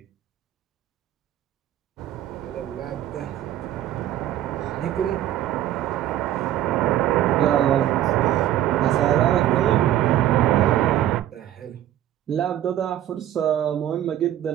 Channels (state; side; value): quieter; left; 12.3 dB